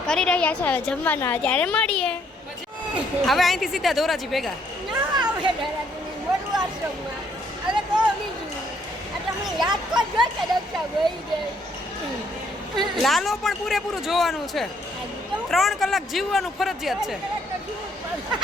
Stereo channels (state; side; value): normal; both; correlation 0.68